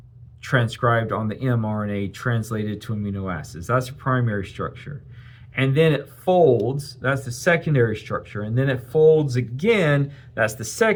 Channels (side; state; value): both; identical; correlation 1.00